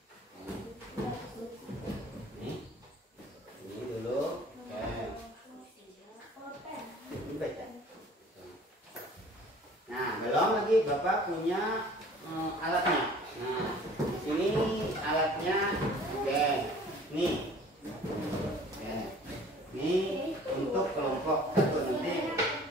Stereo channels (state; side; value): normal; both; correlation 0.50